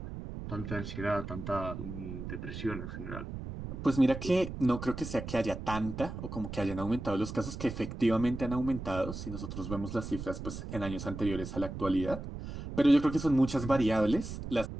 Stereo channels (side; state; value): right; noise; rumble, 8 dB below the sound